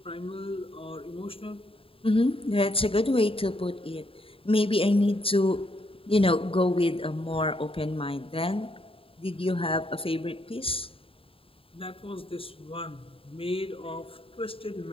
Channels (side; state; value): right; late; 0.27 ms